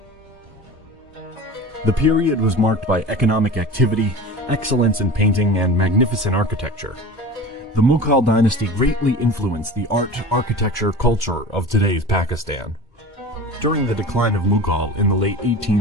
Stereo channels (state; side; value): normal; both; correlation 0.35